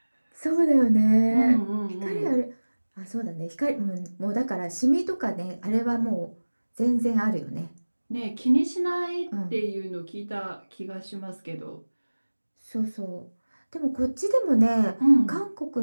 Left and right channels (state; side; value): inverted; both; correlation -1.00